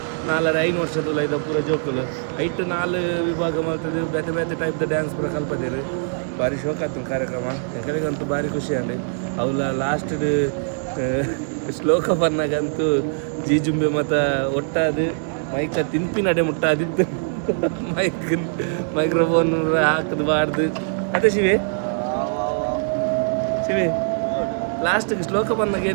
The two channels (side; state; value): left; silent; digital silence